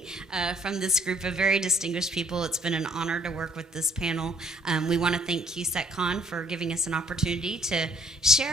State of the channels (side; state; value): both; normal; correlation 0.62